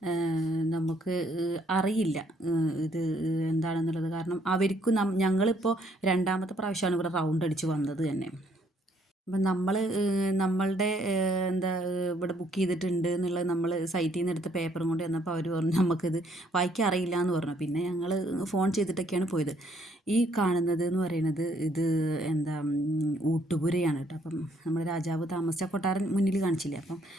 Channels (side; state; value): both; normal; correlation 0.67